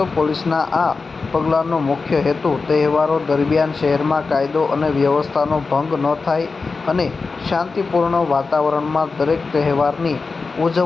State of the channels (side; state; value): right; quieter; 4.3 dB